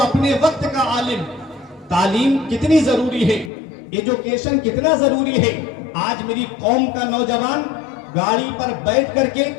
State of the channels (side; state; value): right; drops out; at 3.5 s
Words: اپنے وقت کا عالم. تعلیم کتنی ضروری ہے, ایجوکیشن کتنا ضروری ہے. آج میری قوم کا نوجوان گاڑی پر بیٹھ کر کے